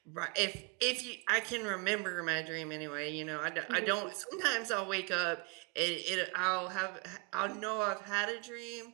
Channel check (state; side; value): quieter; left; 30.3 dB